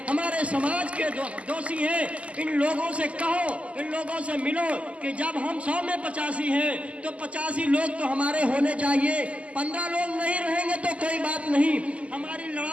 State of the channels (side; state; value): left; late; 0.064 ms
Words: हमारे समाज के दोषी हैं। इन लोगों से कहो, इन लोगों से मिलो कि जब हम 100 में 85 हैं तो 85 लोग तो हमारे होने चाहिए। 15 लोग नहीं रहेंगे तो कोई बात नहीं, हमारी